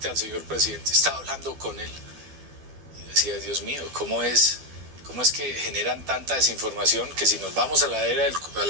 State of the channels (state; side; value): late; left; 12 ms